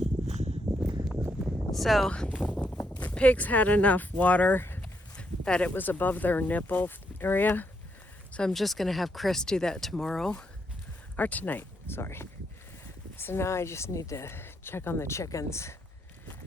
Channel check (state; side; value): normal; both; correlation 0.77